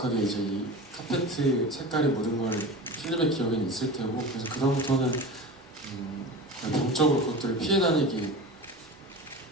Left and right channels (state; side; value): normal; both; correlation 0.31